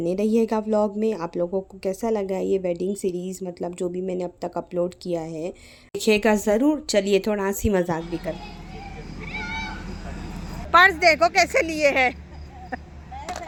रहिएगा व्लॉग में। आप लोगों को कैसा लगा ये वेडिंग सीरीज़, मतलब जो भी मैंने अब तक अपलोड किया है, देखिएगा ज़रूर। चलिए थोड़ा हंसी मजाक भी कर। पर्स देखो कैसे लिए है।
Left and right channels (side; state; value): both; identical; correlation 1.00